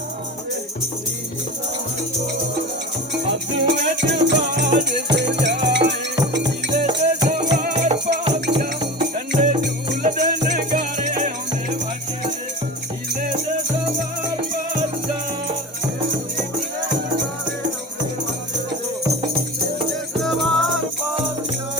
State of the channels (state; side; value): normal; both; correlation 0.32